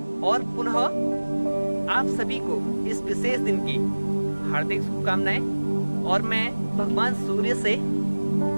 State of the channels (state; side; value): inverted; both; correlation -1.00